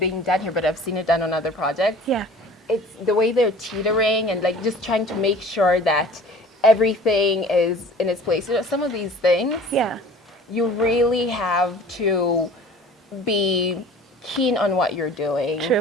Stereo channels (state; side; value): normal; both; correlation 0.45